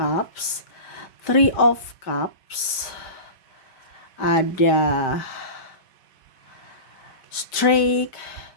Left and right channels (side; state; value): right; late; 5.1 ms